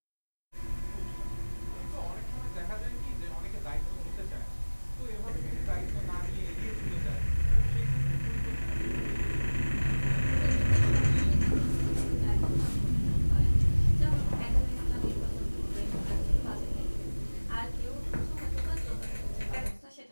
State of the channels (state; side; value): inverted; both; correlation -1.00